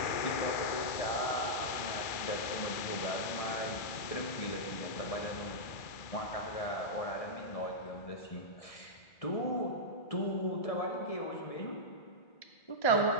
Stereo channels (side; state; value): right; late; 1.7 ms